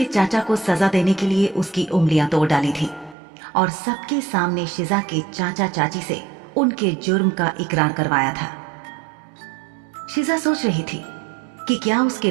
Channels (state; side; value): drops out; left; at 3.2 s